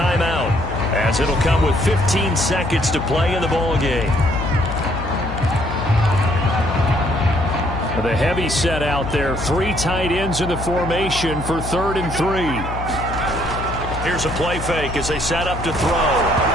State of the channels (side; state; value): left; noise; hum, 7 dB below the sound